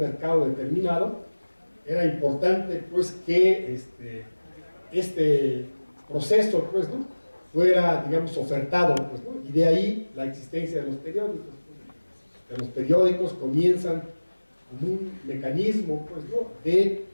determinado, era importante, pues, que este proceso, pues, ¿no? fuera, digamos, ofertado, pues, ¿no? Y de ahí la existencia de los periódicos. Los periódicos comienzan como un mecanismo, pues, ¿no?, de,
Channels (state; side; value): inverted; both; correlation -1.00